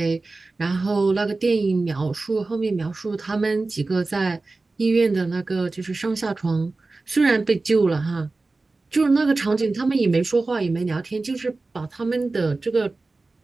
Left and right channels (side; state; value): left; quieter; 3.5 dB